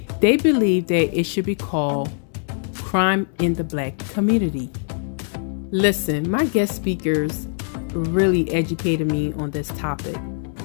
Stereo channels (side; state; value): right; silent; 64 dB below the other